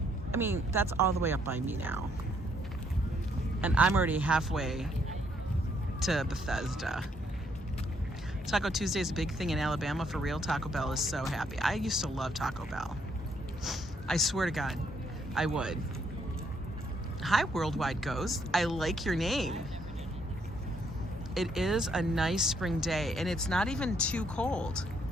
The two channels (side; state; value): both; normal; correlation 0.71